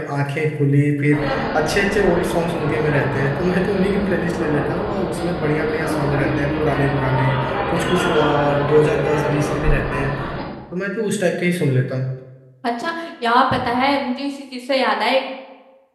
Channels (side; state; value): both; identical; correlation 1.00